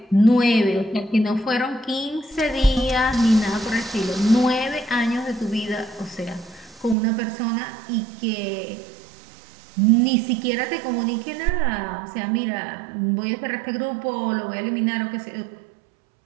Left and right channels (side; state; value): left; drops out; at 7.0 s